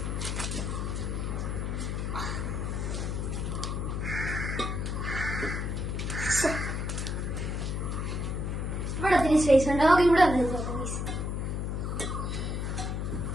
ഇവിടെ ഒത്തിരി സ്പേസ് ഉണ്ട്. നമുക്ക് ഇവിടെ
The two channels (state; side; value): noise; left; hum, 1 dB below the sound